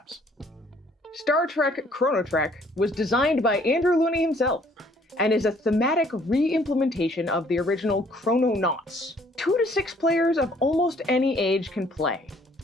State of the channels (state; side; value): normal; both; correlation 0.61